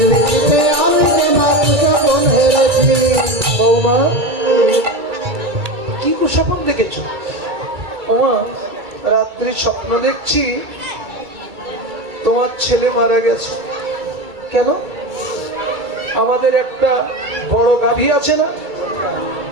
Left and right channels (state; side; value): late; left; 2.3 ms